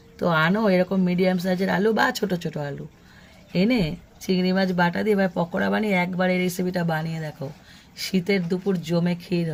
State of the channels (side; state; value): both; identical; correlation 1.00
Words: তো আনো এরকম মিডিয়াম সাইজের আলু বা ছোট ছোট আলু এনে চিংড়ি মাছ বাটা দিয়ে এবার পকোড়া বানিয়ে একবার এই রেসিপিটা বানিয়ে দেখো, শীতের দুপুর জমে ক্ষীর